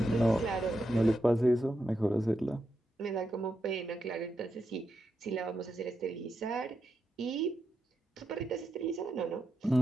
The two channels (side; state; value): both; normal; correlation 0.85